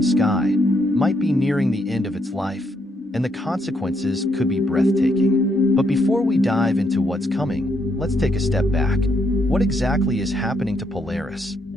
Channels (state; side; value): normal; both; correlation 0.75